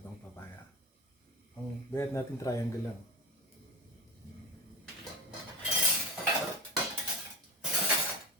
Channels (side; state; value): both; normal; correlation 0.29